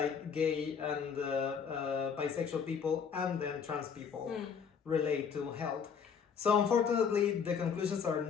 gay and bisexual people, and then trans people relate to health. So unfortunately, the conclusions are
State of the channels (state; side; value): quieter; right; 6.7 dB